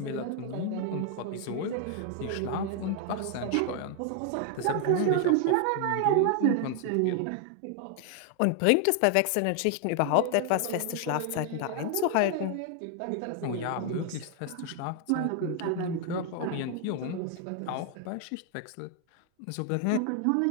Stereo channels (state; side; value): different; both; correlation 0.00